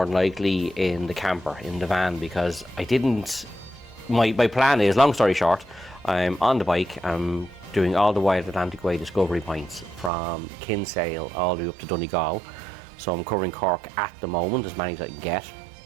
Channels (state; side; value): drops out; left; at 10.1 s